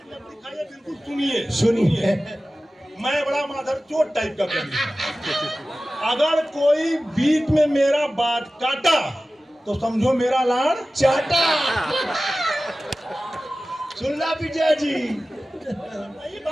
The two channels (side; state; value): both; normal; correlation 0.96